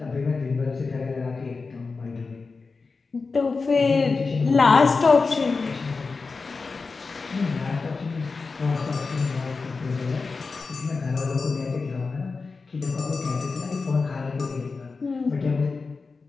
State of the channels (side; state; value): right; quieter; 4.3 dB